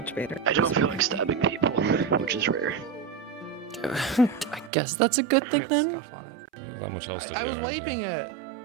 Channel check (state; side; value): drops out; left; at 4.7 s